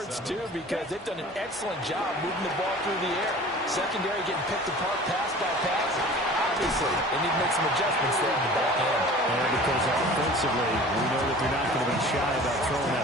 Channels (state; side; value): normal; both; correlation 0.43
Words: it's due, because they've done an excellent job moving the ball through the air. Secondary getting picked apart pass by pass. Obviously, they need to make some adjustments there in the back end. And because offensively, we know that they're not going to be shy about throwing